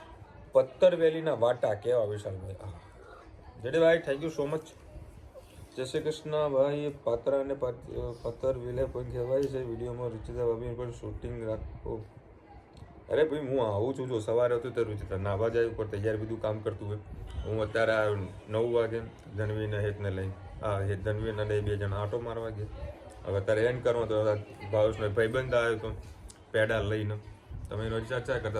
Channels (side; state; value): both; identical; correlation 1.00